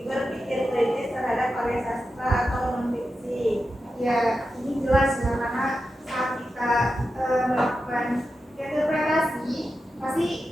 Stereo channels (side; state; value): both; normal; correlation 0.90